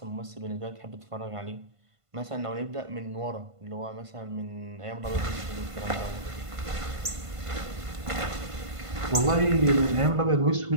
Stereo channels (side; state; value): left; late; 1.5 ms